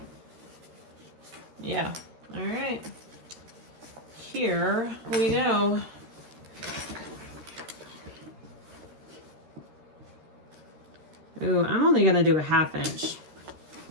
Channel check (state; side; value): late; left; 13 ms